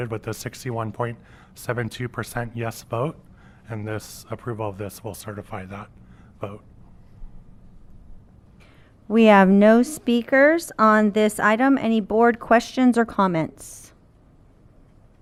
with a 61.72% yes vote, and this approval of this will certify that vote. We have no speakers on this item. Any board questions or comments?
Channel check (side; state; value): both; identical; correlation 1.00